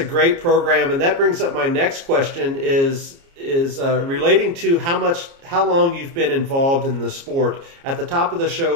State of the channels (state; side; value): late; left; 29 ms